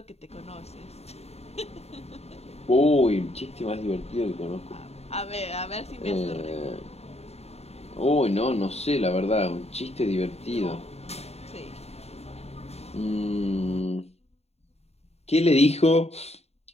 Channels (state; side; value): late; right; 0.30 ms